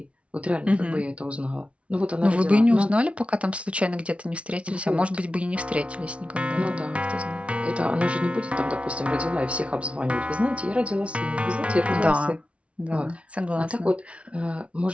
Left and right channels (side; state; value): left; late; 0.062 ms